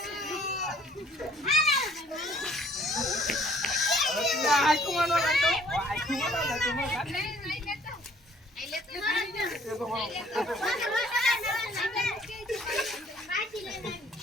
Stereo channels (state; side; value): normal; both; correlation 0.59